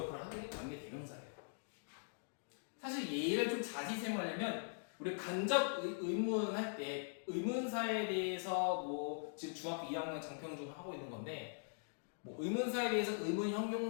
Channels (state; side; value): silent; right; digital silence